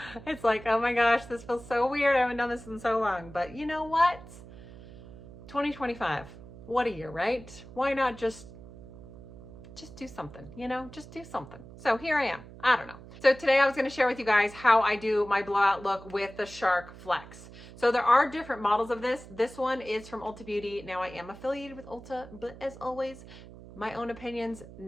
It's like, oh my gosh, this feels so weird. I haven't done this in so long. But you know what? 2025. What a year, right? Why not just do something, just do something. So here I am. I don't know. So today I was going to share with you guys how I do my blowout look with the Shark Flex. So there are different models of this. This one is from Ulta Beauty. Now I am affiliated with Ulta, but as always, my own opinions,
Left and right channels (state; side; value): noise; right; hum, 17 dB below the sound